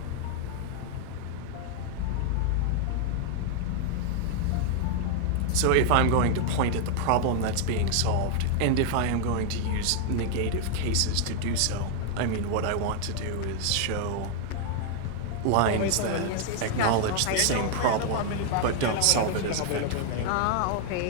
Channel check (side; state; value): both; different; correlation 0.00